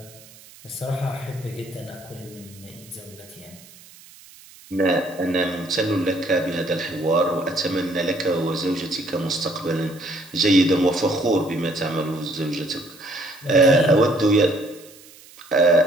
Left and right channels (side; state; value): right; noise; hiss, 22 dB below the sound